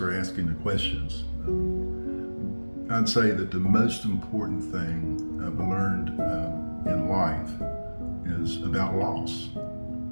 asking the questions. I'd say that the most important thing I've learned in life is about loss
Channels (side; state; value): both; inverted; correlation -1.00